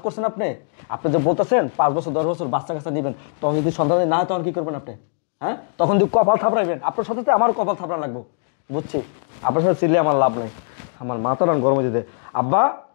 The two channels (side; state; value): right; silent; 62 dB below the other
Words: করছেন আপনি? আপনি যে বলতেছেন 5 বছর 10 বছর বাচ্চা কাচ্চা দিবেন, তখন যদি সন্তান না হয় তখন কি করবেন আপনি? হ্যাঁ, তখন যদি কপাল থাপড়াইবেন, আপনার সাথে আমার কপাল থাপড়া লাগবে। বুঝছি, আপনার সাথে চিল্লে আমার লাভ নেই, আমার মাথাটা গরম হয়ে যেতে। আব্বা,